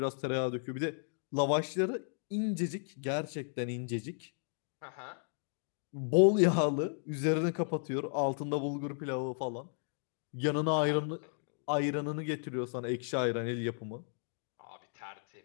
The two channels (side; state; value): right; silent; digital silence